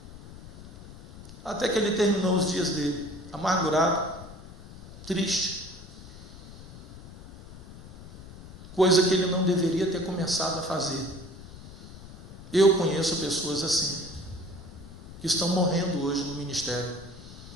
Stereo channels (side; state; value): left; noise; rumble, 17 dB below the sound